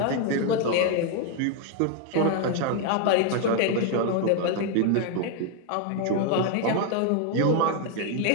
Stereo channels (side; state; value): both; different; correlation 0.01